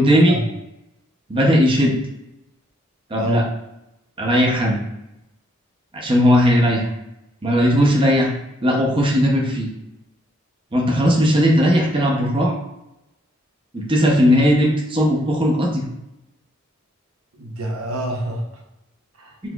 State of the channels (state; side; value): normal; both; correlation 0.73